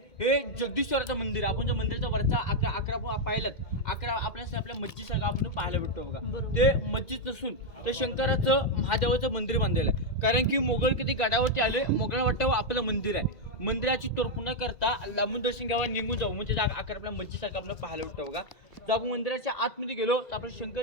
हे जगदीश्वराचं मंदिर आहे. आपण जे मंदिराचा वरचा 11 पाहिलात, 11 आपल्या मस्जिदसारखं आपण पाहायला भेटतो बघा. ते मस्जिद नसून ते शंकराचं महादेवाचं मंदिर बांधलेलं आहे. कारण की मोगल कधी गडावरती आले, मोगलांना वाटतं आपलं मंदिर आहे. मंदिराची तोडफोड न करता लांबून दर्शन घ्यावं, निघून जाऊ, म्हणजे जागा आकार आपल्या मस्जिदसारखं आपण पाहायला भेटतो बघा. जर आपण मंदिराच्या आतमध्ये गेलो तर आपलं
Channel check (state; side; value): late; right; 2.1 ms